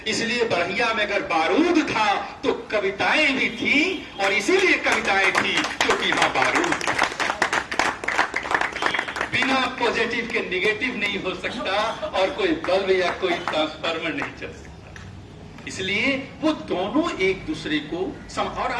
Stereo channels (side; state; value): both; identical; correlation 1.00